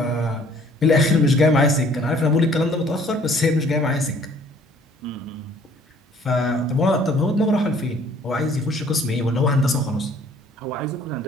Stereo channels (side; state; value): both; normal; correlation 0.57